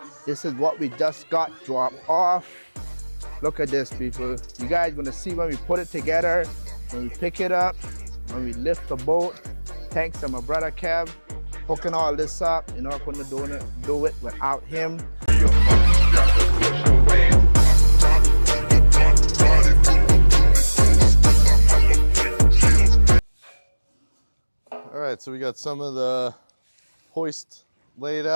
This is what we just got dropped off. Look at this, people. You guys gonna see when we put it together, when we pick it up, when we lift the boat. Thanks to my brother Kev hooking all this up. You know, I couldn't do it without him. All right, so we got some of the hoist laid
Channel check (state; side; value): inverted; both; correlation -1.00